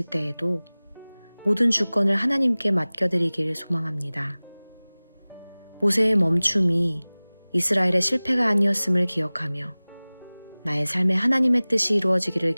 때에도 모든 주권을 하나님께 맡겨드리길 소망합니다. 모세의 멈춤이 이스라엘의 실패가 아니었음을 기억하며 나의 삶에 하나님의 뜻이 이루어지기를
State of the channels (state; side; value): inverted; both; correlation -1.00